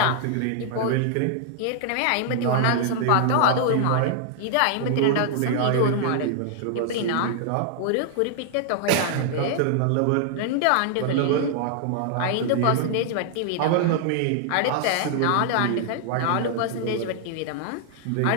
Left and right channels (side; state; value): both; different; correlation 0.00